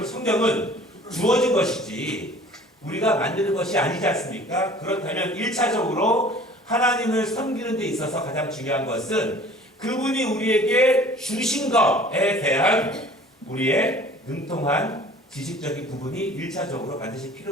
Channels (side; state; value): both; normal; correlation 0.48